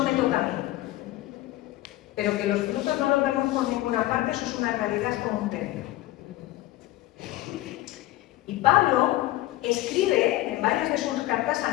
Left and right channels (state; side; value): quieter; right; 16.4 dB